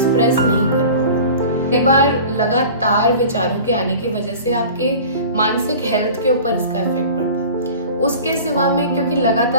नहीं कर पाओगे। कई बार लगातार विचारों के आने की वजह से आपके मानसिक हेल्थ के ऊपर इसका इफेक्ट पड़ता है। उसके सिवा में क्योंकि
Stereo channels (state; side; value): inverted; both; correlation -0.40